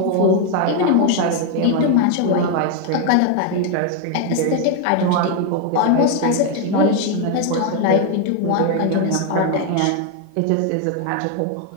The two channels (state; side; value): different; both; correlation 0.01